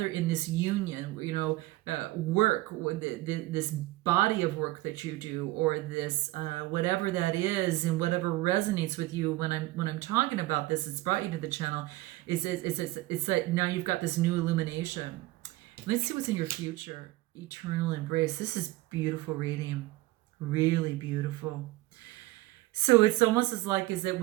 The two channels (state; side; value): quieter; left; 18.7 dB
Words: in this union, work, this body of work that you do, or this whatever that is, and whatever resonates with you. When I'm talking about this, it's brought you to the channel. It's like now you've got this new illumination. Let's see what's in your future. Eternal embrace. This is beautiful reading, really beautiful. So it's almost as like is that